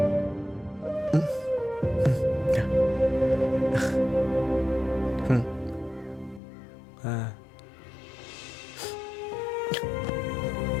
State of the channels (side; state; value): right; drops out; at 6.4 s